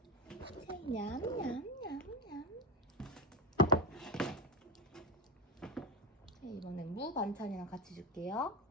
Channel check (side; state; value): both; normal; correlation 0.11